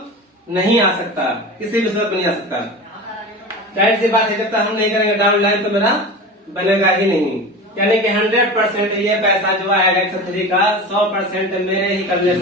नहीं आ सकता, किसी भी सूरत में नहीं आ सकता। जाहिर सी बात है, जब तक हम नहीं करेंगे डाउन लाइन तो मेरा बनेगा ही नहीं। यानी कि 100% ये पैसा जो आएगा X3 का 100% मेरे ही करने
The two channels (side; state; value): both; normal; correlation 0.30